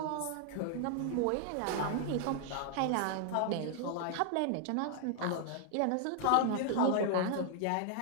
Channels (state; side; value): different; both; correlation 0.00